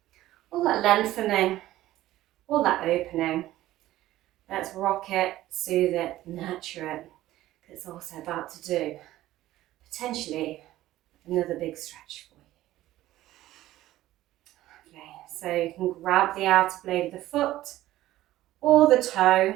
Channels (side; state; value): left; quieter; 15.1 dB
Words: all that lengthening, all that opening. Let's rock it, soothe it, nurture it. It's also about to do potentially another big stretch for you. Okay, so you can grab the outer blade of the foot or the toe